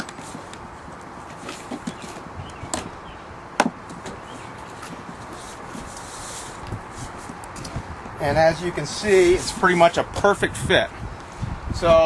And as you can see, it's pretty much a perfect fit.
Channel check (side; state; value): both; identical; correlation 1.00